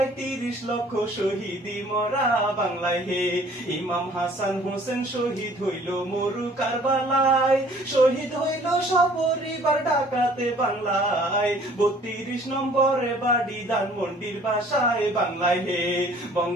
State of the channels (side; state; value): both; normal; correlation 0.55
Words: 30 লক্ষ শহীদি মরা। বাংলায় হে ইমাম হাসান হোসেন শহীদ হইল মরু কারবালায়, শহীদ হইল সপরিবার ঢাকাতে। বাংলায় 32 নম্বরে বাড়ি ধানমন্ডির বাসায়। বাংলায় হে